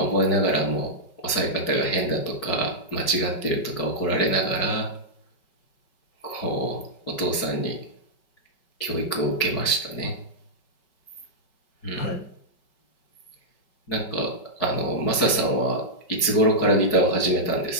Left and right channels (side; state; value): right; late; 5.2 ms